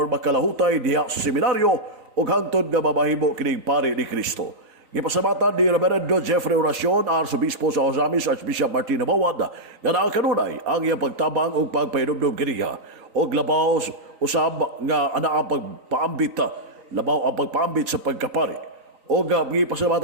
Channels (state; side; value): late; left; 3.9 ms